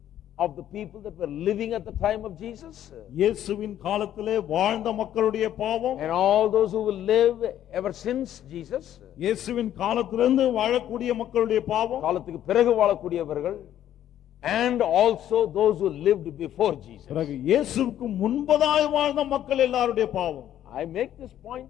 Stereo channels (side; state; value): right; quieter; 11.4 dB